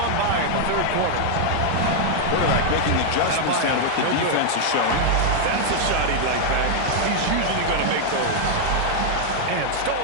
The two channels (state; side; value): different; both; correlation 0.00